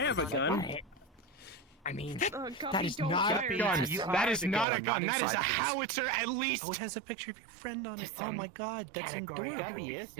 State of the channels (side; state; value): left; drops out; at 4.7 s